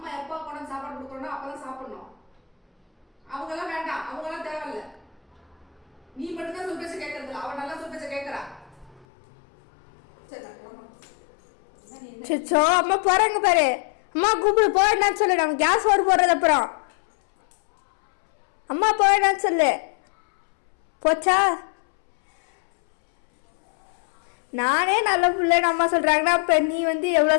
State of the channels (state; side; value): drops out; right; at 9.1 s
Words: எப்போ கொண்டு சாப்பாடு கொடுக்கணும் அப்பதான் சாப்பிடணும். அவங்கெல்லாம் வேண்டாம், அவங்கெல்லாம் தேவையில்ல. நீ மட்டும்தான் சொல் பேச்ச கேட்கறது. அவன் நல்லா சொல் பேச்ச கேட்கறா. சோ அம்மா போறாங்க பாரு. அம்மா கூப்பிடு, போயிடான்னு சொல்லு. நம்ம கேஸ் ஓடு போடுறது அப்புறம். அம்மா போயிடான்னு சொல்லு. போச்சா? நானே நல்ல பிள்ளைன்னு அம்மா சொல்றாங்கன்னா அப்ப நீ வந்து